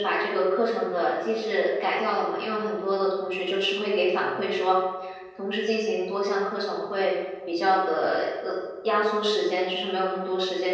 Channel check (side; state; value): both; identical; correlation 1.00